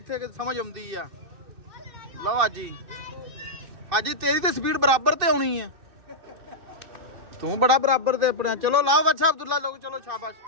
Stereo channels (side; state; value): left; late; 2.6 ms